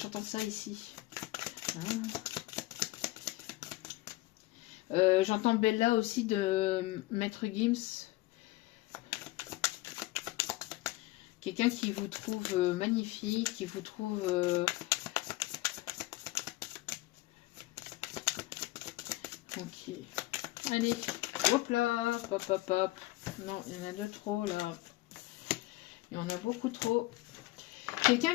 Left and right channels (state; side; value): quieter; right; 19.0 dB